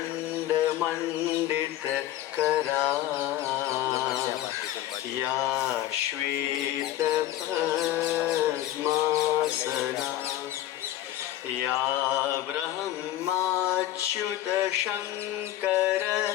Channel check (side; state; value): right; quieter; 13.6 dB